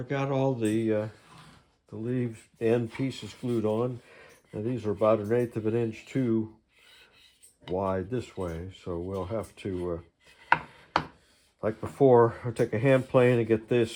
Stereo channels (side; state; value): both; identical; correlation 1.00